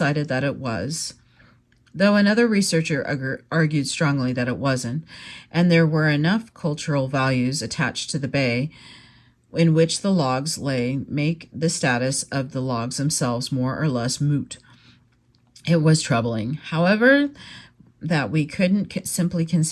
that it was, though another researcher argued strongly that it wasn't, and there were enough cultural values attached to the bay in which the logs lay make the status of the logs themselves more or less moot. It was troubling, however, that we couldn't simply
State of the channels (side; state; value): both; identical; correlation 1.00